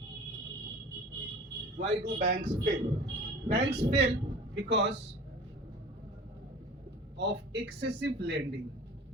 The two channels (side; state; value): both; normal; correlation 0.41